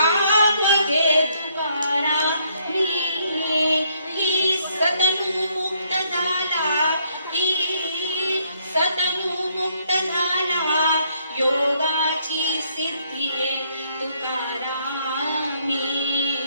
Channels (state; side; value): inverted; both; correlation -0.69